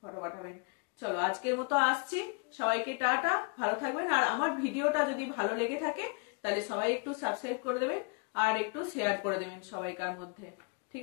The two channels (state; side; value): quieter; right; 35.6 dB